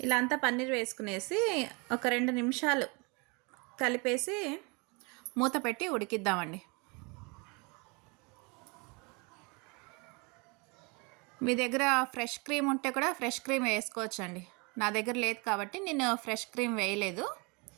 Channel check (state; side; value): quieter; left; 29.7 dB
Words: ఇలా అంతా పన్నీర్ వేసుకునేసి ఒక 2 నిమిషాలు కలిపేసి మూత పెట్టి ఉడికిద్దామండి. మీ దగ్గర ఫ్రెష్ క్రీమ్ ఉంటే కూడా ఫ్రెష్ క్రీమ్ వేసుకోవచ్చండి. నా దగ్గర లేదు కాబట్టి నేను ఫ్రెష్ క్రీమ్ వేయలేదు,